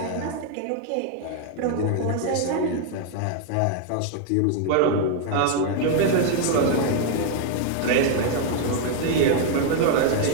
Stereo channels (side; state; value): both; different; correlation 0.00